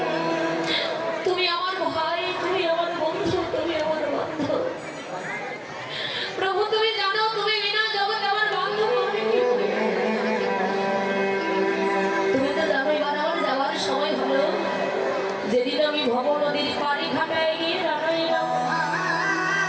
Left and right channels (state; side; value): identical; both; correlation 1.00